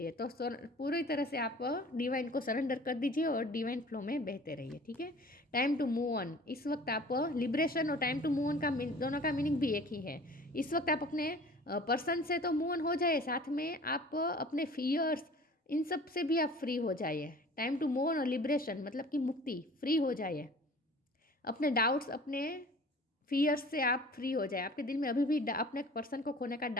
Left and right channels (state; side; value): normal; both; correlation 0.46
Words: तो पूरी तरह से आप डिवाइन को सरेंडर कर दीजिए और डिवाइन फ्लो में बहते रहिए. ठीक है. Time to move on. इस वक्त आप लिबरेशन और टाइम टू मूव ऑन का दोनों का मीनिंग भी एक ही है. इस वक्त आप अपने पर्सन से तो मूव ऑन हो जाए, साथ में आप अपने फियर्स इन सब से भी आप फ्री हो जाइए. टाइम टू मूव ऑन और लिबरेशन मतलब कि मुक्ति, फ्री हो जाइए. अपने डाउट्स, अपने फियर्स से आप फ्री हो जाए. आपके दिल में अभी भी अपने पर्सन को खोने का